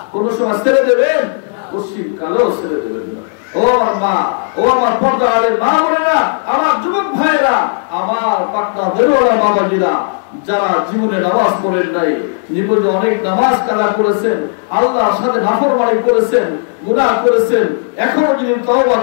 কোন সময় ছেড়ে দেবেন? পশ্চিম কালেও ছেড়ে দেবেন না। ও আমার মা, ও আমার পর্দার মা বোনেরা, আমার যুবক ভাইরা, আমার পাটনা দেওয়ালা বাবাজিরা, যারা জীবনে নামাজ পড়েন নাই, জীবনে অনেক নামাজ কাজা করেছেন, আল্লাহর সাথে নাফরমানি করেছেন, গুনাহ করেছেন, এখনো যদি তওবা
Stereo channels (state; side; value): silent; right; digital silence